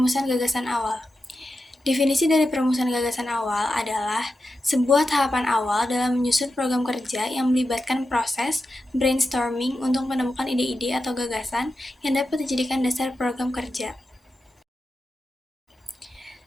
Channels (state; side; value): normal; both; correlation 0.90